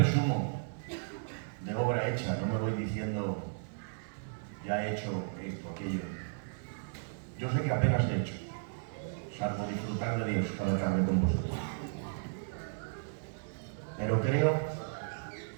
de obra hecha, no me voy diciendo ya he hecho esto, aquello. Yo sé que apenas he hecho, salvo disfrutar de Dios cada tarde con vosotros. Pero creo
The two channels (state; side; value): silent; left; 55 dB below the other